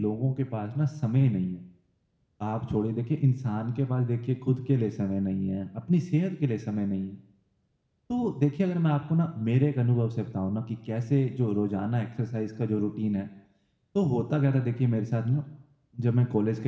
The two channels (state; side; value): identical; both; correlation 1.00